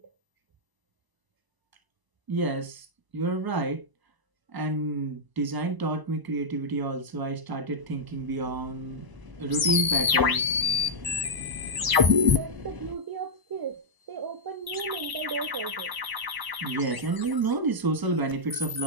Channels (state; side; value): late; left; 1.0 ms